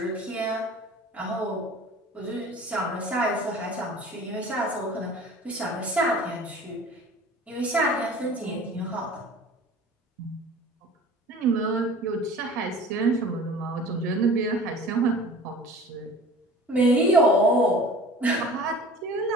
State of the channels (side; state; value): both; normal; correlation 0.43